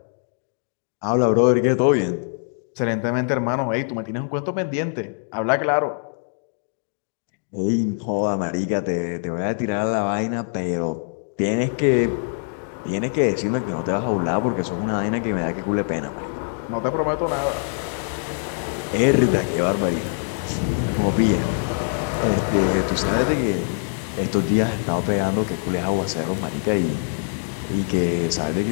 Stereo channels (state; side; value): silent; right; digital silence